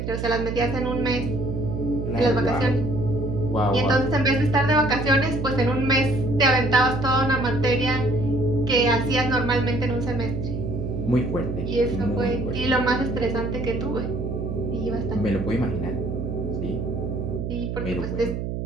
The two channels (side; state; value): right; noise; hum, 4 dB below the sound